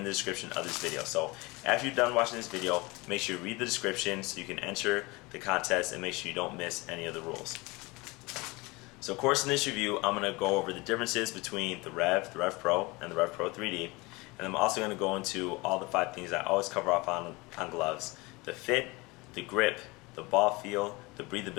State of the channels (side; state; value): right; quieter; 24.2 dB